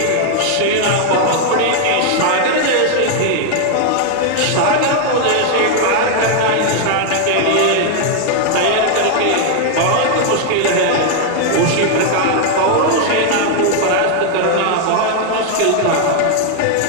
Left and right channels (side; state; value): both; different; correlation 0.00